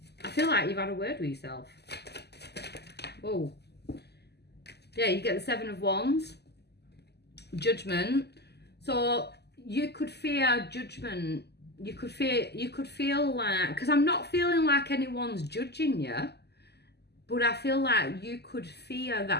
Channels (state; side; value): late; right; 0.49 ms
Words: I feel like you've had a word with yourself. Whoa. Yeah, you get the Seven of Wands. Judgment. So you could fear judgment. You could feel like, because I'm not feeling like anyone's judging you, but I feel like you could fear